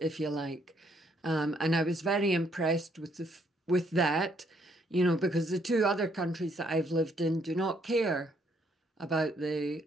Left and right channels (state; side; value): normal; both; correlation 0.69